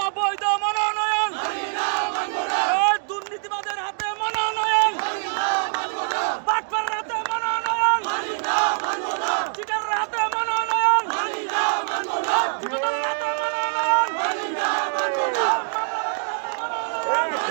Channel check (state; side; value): silent; left; digital silence